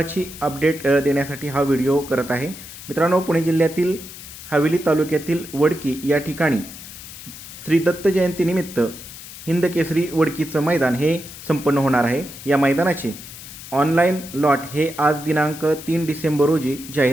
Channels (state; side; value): noise; left; hiss, 14 dB below the sound